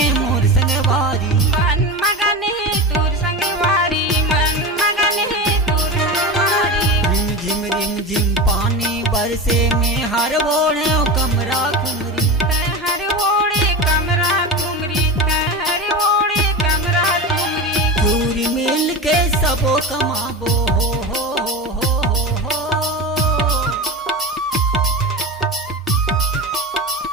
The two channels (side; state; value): both; normal; correlation 0.24